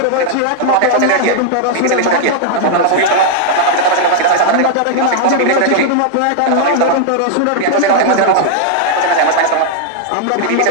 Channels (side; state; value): both; different; correlation -0.01